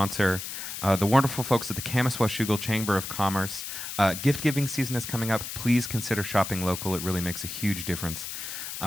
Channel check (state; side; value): noise; left; hiss, 7 dB below the sound